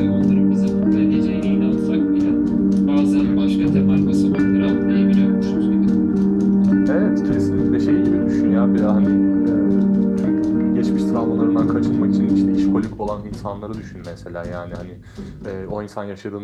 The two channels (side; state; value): both; identical; correlation 1.00